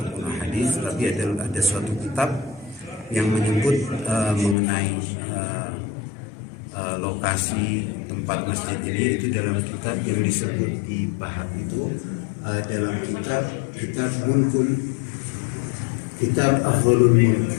hadis, tapi ada suatu kitab yang menyebut mengenai lokasi tempat masjid ini. Itu dalam kitab yang disebut di Bahar itu, dalam kitab Mulkul, kitab Afdhalul Mulk.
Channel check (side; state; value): right; drops out; at 4.5 s